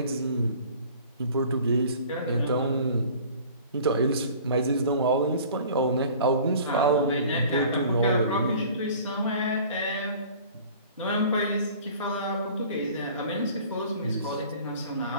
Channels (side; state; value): both; inverted; correlation -0.47